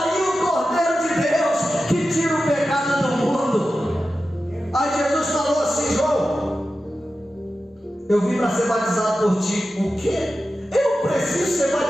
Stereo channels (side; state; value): both; normal; correlation 0.92